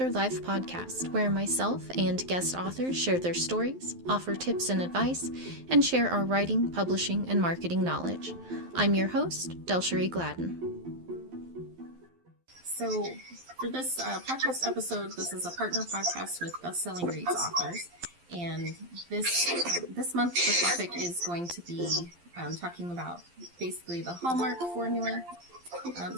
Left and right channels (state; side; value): late; left; 12 ms